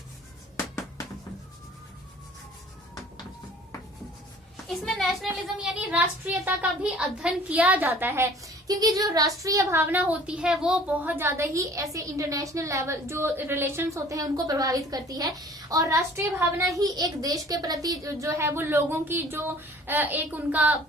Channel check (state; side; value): normal; both; correlation 0.50